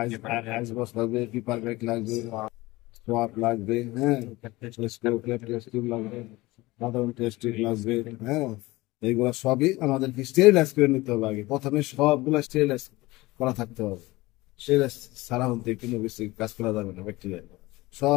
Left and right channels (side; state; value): right; quieter; 20.3 dB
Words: আইস বক্স লাগবে, পেপার ব্যাগ লাগবে, সোয়াব লাগবে, হ্যাঁ, টেস্ট টিউব লাগবে, সাধারণ টেস্ট টিউব লাগবে, হ্যাঁ, এইগুলো সবই আমাদেরকে স্টেরিলাইজ করে নিতে হবে। আগে প্রথমে সবগুলো স্টেরিলাইজ করা থাকতে হবে। স্টেরিলাইজ ছাড়া হতে কোনো কিছু কাজ করা যাবে না। ব্যাকটেরিয়া